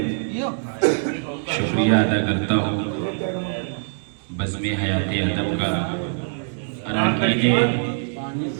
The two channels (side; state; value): left; silent; 63 dB below the other